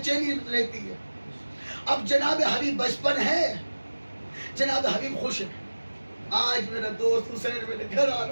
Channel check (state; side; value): inverted; both; correlation -1.00